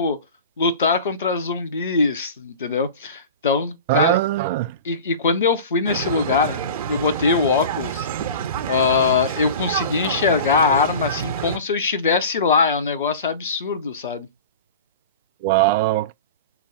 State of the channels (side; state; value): both; inverted; correlation -0.34